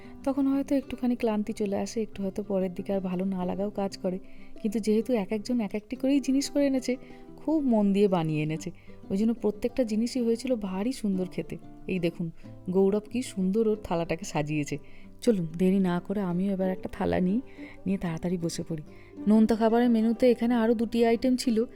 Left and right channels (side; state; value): both; identical; correlation 1.00